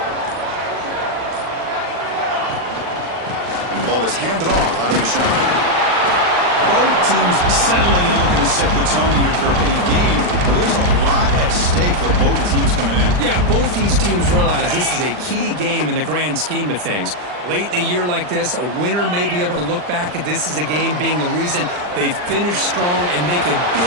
And the ball is handed off out of the shotgun. Both teams settling in, looking to set the tone here, Kirk, in a game where there's a lot at stake for both teams coming in. Yeah, both these teams realize this is a key game in the grand scheme of things. Late in a year like this, a winner may be able to look back at this as a game being the reason they finish strong and make a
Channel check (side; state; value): left; late; 40 ms